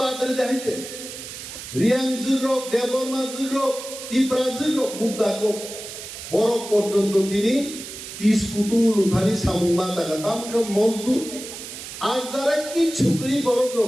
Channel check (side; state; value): right; noise; hiss, 11 dB below the sound